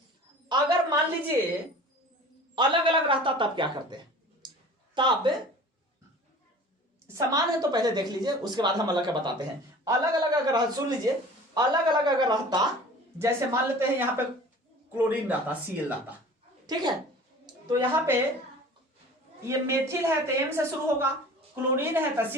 अगर मान लीजिए अलग अलग रहता तब क्या करते हैं, तब समान है तो पहले देख लीजिए, उसके बाद हम अलग का बताते हैं। अलग अलग अगर, सुन लीजिए, अलग अलग अगर रहता, जैसे मान लेते हैं यहां पे क्लोरीन रहता, Cl रहता, ठीक है, तो यहां पे ये मेथिल है तो M से शुरू होगा, क्लोरीन है तो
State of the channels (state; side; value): normal; both; correlation 0.43